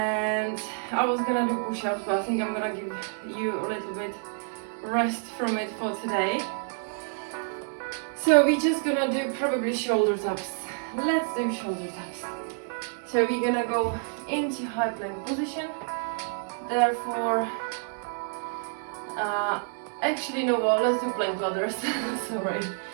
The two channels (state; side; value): silent; left; 59 dB below the other